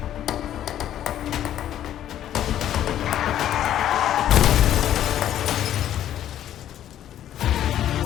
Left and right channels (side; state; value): right; quieter; 11.4 dB